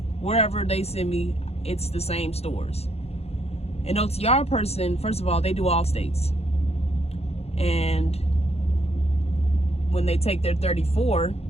wherever they send me, it's the same stores. An OTR person, first of all, they do all states. And when they take their 34,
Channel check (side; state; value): right; late; 0.30 ms